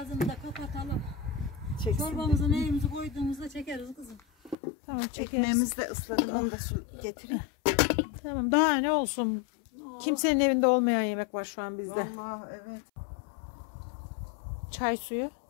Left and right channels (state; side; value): drops out; right; at 4.5 s